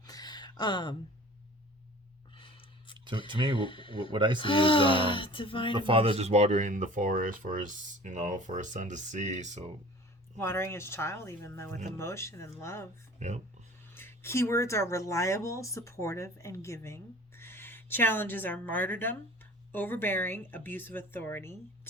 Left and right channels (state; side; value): normal; both; correlation 0.44